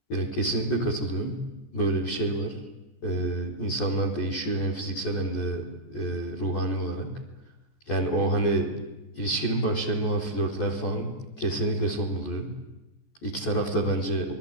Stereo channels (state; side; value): late; right; 14 ms